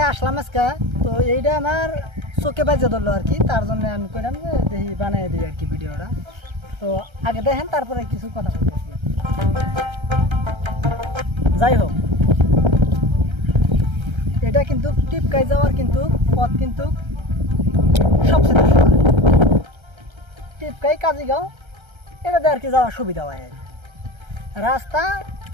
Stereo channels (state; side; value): late; left; 1.3 ms